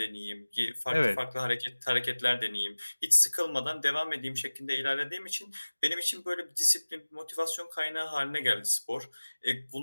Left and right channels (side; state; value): both; inverted; correlation -1.00